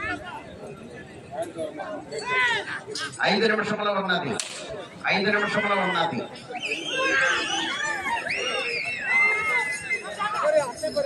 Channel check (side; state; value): both; identical; correlation 1.00